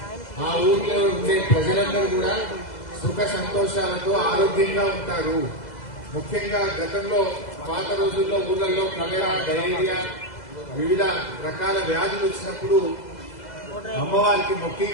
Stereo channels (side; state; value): right; late; 2.0 ms